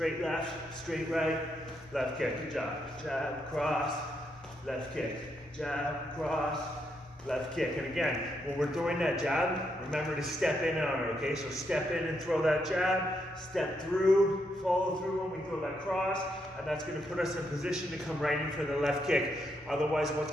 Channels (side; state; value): both; normal; correlation 0.79